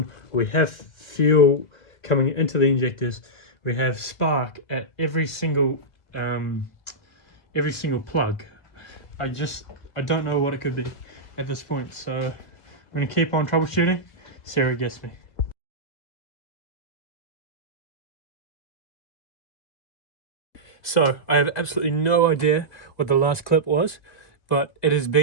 We have fuel coming into the injectors. We have spark at every single plug. I don't know what it could be at this point. So I'm going to keep on troubleshooting, see where it gets me. So I have absolutely no idea what the last clip was, but it has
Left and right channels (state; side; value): late; right; 2.0 ms